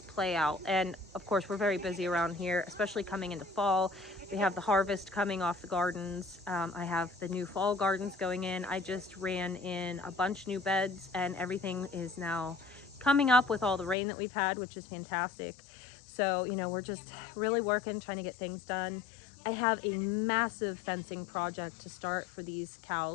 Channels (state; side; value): drops out; right; at 14.0 s